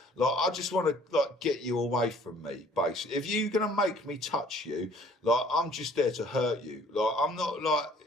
Like, I just want to like get you away from me, basically. If you're gonna make me touch you, like, I'm just there to hurt you. Like, I'm not like,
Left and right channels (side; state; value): both; normal; correlation 0.56